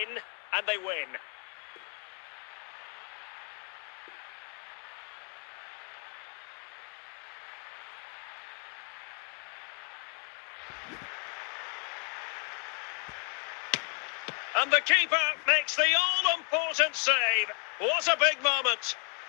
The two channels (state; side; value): quieter; right; 36.7 dB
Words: and they win. And the keeper makes the all-important save. What a big moment.